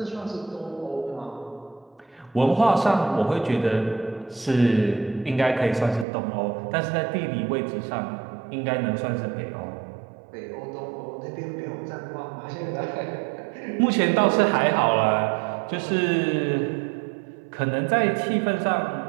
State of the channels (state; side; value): drops out; left; at 6.1 s